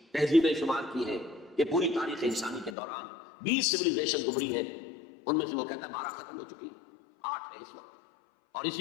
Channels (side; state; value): right; drops out; at 2.8 s